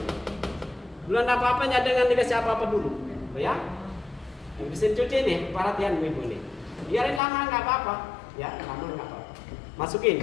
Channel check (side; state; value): right; drops out; at 7.2 s